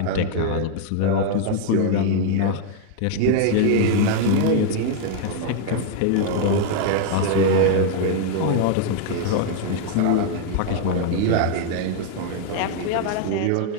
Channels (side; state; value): both; different; correlation 0.00